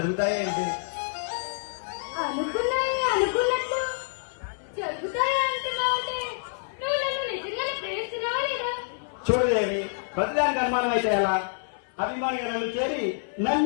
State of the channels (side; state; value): right; silent; 58 dB below the other